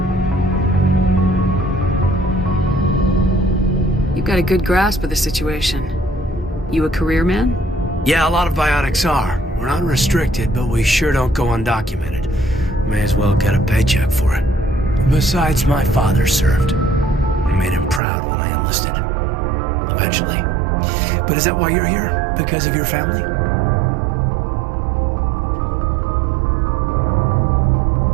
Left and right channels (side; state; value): left; drops out; at 18.0 s